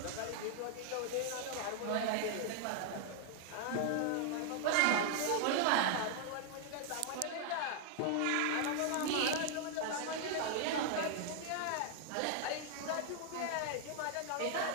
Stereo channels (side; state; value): both; different; correlation 0.00